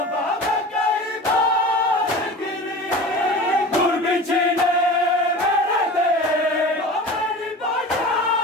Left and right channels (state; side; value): normal; both; correlation 0.35